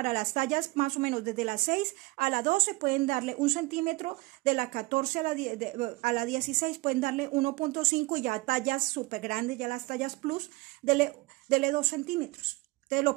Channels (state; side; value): quieter; left; 22.7 dB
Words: las tallas más o menos desde la 6 a la 12 pueden darle 1 centímetro. De la 14 a la 16 pueden darle 1.5 y ya tallas súper grandes, ya las tallas plus, dele 2 centímetros. Entonces